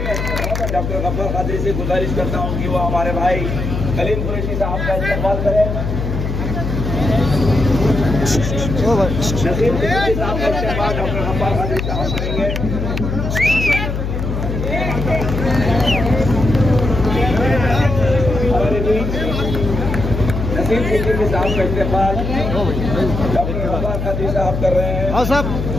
डॉक्टर गफ्फार कादरी से गुजारिश करता हूँ कि वो हमारे भाई कलीम कुरैशी साहब का इस्तेमाल करें। नसीम कुरैशी साहब का इस्तेमाल डॉक्टर गफ्फार कादरी साहब करेंगे। हमारे बीच नसीम कुरैशी साहब का इस्तेमाल डॉक्टर गफ्फार कादरी साहब कर रहे हैं। हाँ साहब,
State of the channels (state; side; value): noise; left; hum, 3 dB below the sound